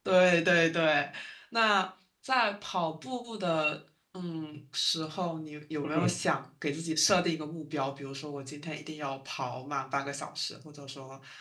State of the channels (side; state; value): both; identical; correlation 1.00